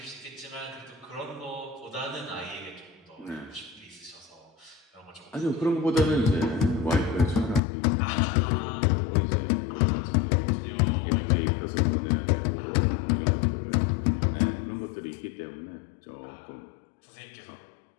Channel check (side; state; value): right; drops out; at 7.6 s